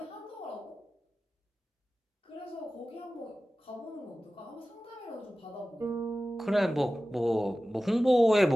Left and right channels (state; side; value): normal; both; correlation 0.95